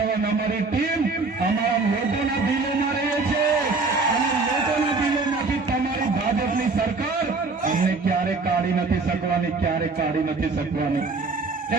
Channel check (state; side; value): quieter; left; 3.9 dB